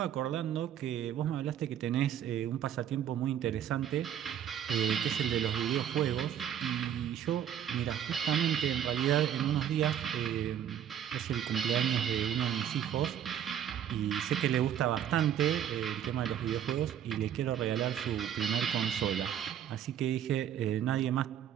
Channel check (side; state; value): left; quieter; 9.9 dB